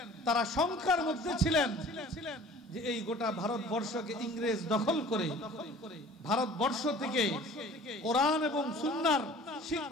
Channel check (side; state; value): both; normal; correlation 0.46